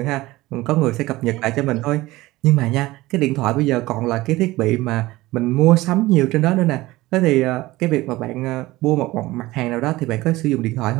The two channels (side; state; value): left; quieter; 18.7 dB